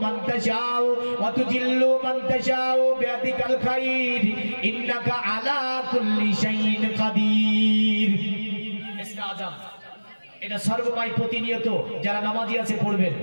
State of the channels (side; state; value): both; inverted; correlation -1.00